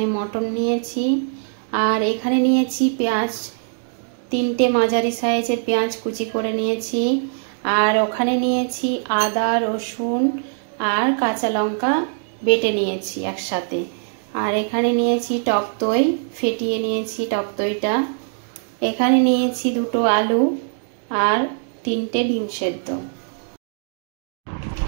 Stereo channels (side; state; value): left; silent; digital silence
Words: মটন নিয়েছি, আর এখানে নিয়েছি পেঁয়াজ, 3টে মাঝারি সাইজের পেঁয়াজ কুচি করে নিয়েছি, আর ওখানে নিয়েছি আদা, রসুন আর কাঁচা লঙ্কা বেটে নিয়েছি একসাথে। আর এখানে নিয়েছি টক দই, ফেটিয়ে নিয়েছি টক দইটা। এখানে নিয়েছি 2টো আলু আর 3টে ডিম সেদ্ধ।